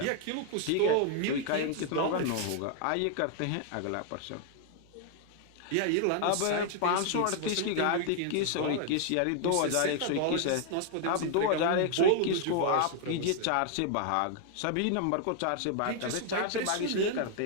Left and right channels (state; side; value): different; both; correlation 0.00